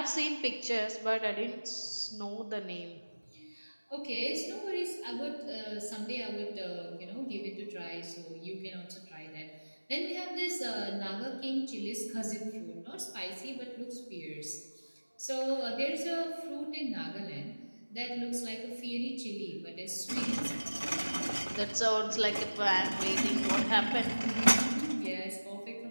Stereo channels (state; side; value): inverted; both; correlation -1.00